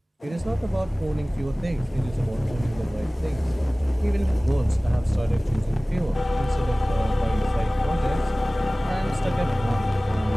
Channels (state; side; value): normal; both; correlation 0.98